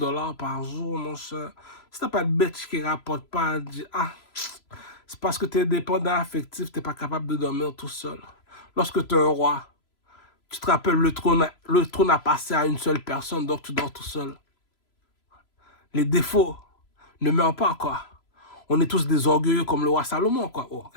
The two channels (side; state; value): right; late; 3.0 ms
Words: par jour, mon cher. Si t'as pas de bitch qui rapporte pas, dis, ah, c'est parce que tu es dépendant affectif, tu n'es pas capable de dormir tout seul. Lorsque tu es un roi, tu te rappelles, le trône a passé à une seule personne, donc tu dors tout seul. Les défauts ne meurent pas, quoi. On est tous des orgueilleux comme le roi Salomon, quoi. Oh,